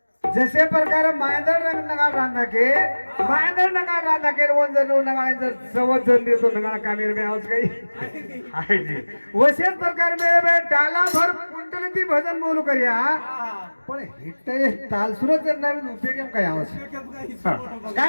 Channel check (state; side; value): inverted; both; correlation -1.00